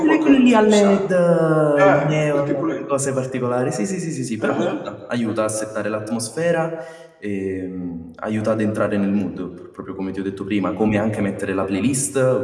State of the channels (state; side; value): identical; both; correlation 1.00